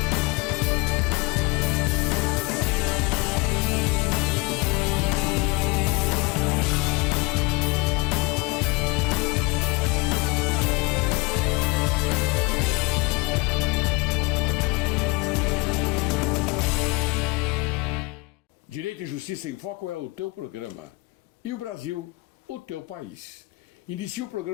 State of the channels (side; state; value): right; quieter; 26.3 dB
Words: Direito e Justiça em Foco é o teu programa. E o Brasil, o teu país. Inicia o